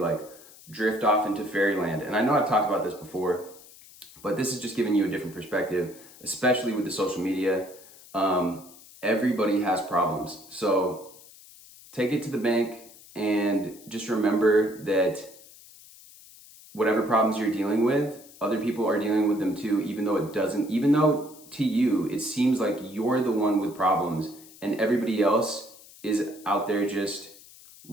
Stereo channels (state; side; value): noise; left; hiss, 21 dB below the sound